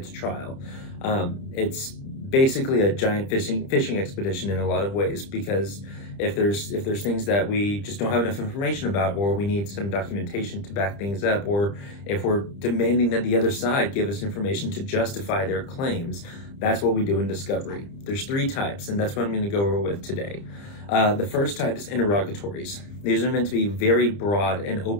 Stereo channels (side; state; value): right; late; 30 ms